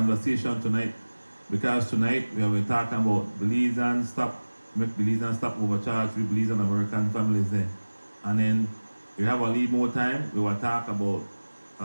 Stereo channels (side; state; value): both; inverted; correlation -1.00